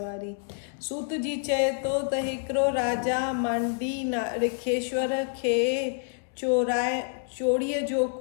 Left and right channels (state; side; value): silent; right; 60 dB below the other